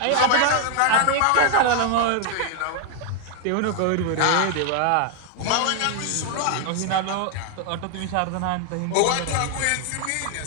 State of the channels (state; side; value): different; both; correlation 0.00